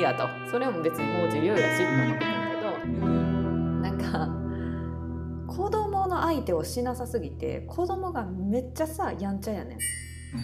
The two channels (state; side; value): identical; both; correlation 1.00